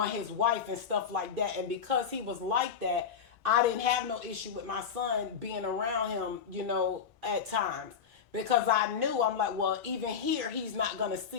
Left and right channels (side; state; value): right; quieter; 6.9 dB